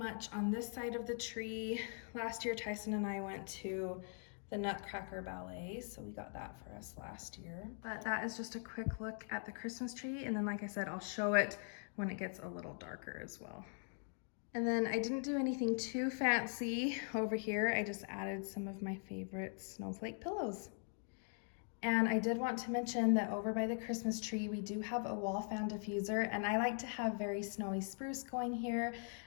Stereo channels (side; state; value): right; silent; 50 dB below the other